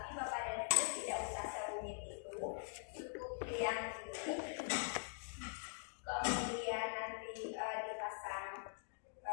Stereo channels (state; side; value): silent; right; digital silence